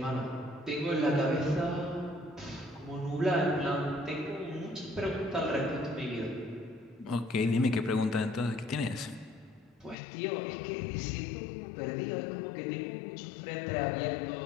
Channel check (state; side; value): drops out; right; at 10.0 s